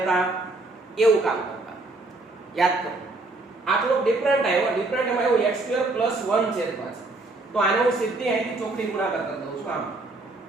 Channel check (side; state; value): left; quieter; 3.0 dB